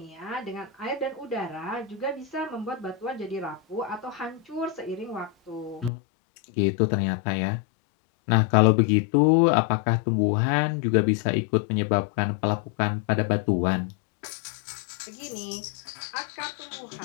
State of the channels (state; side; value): drops out; right; at 5.9 s